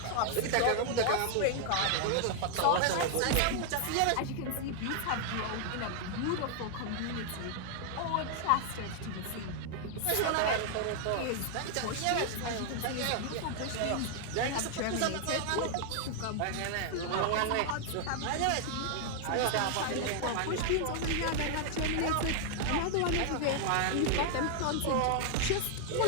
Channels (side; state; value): both; different; correlation 0.00